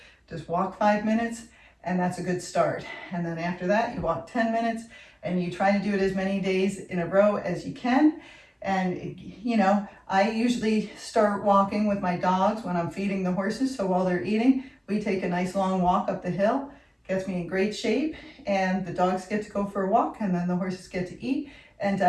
Just walk 5 minutes, and that's a good start. And then after that, you walk 10 minutes, and you try to do it as many days in a row as you can. And, you know, I usually start walking with my dogs when I'm feeding the horses. So while they're eating, we take a nice long walk up the hill. Gets me in great shape, and the dogs get to go for a walk, and then the horses get to eat and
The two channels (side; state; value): both; identical; correlation 1.00